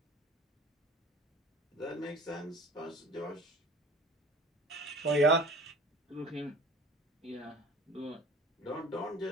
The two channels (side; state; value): both; normal; correlation 0.44